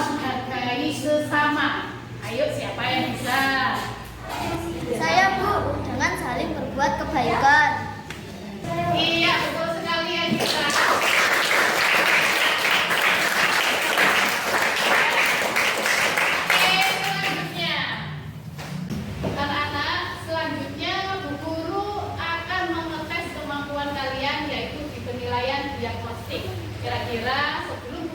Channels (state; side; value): identical; both; correlation 1.00